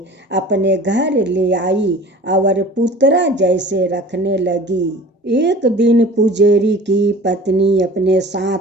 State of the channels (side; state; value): both; normal; correlation 0.42